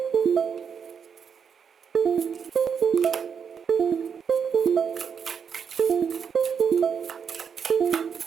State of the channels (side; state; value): left; quieter; 6.8 dB